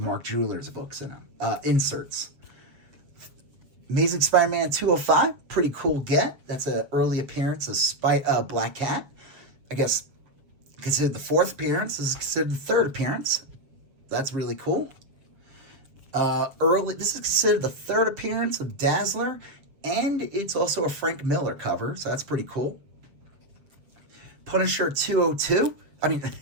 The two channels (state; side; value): late; left; 7.3 ms